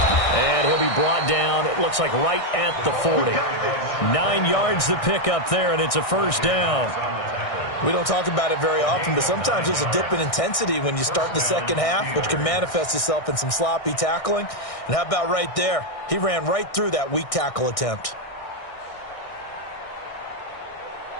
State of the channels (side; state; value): right; late; 1.6 ms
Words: And he'll be brought down, it looks like right at the 40. 9 yards to pick up there, and it's a 1st down. We don't talk about it very often, but sometimes there's a dip in intensity when you start the 2nd half, which can manifest itself in some sloppy tackling. And how about right there? He ran right through that weak tackle attempt.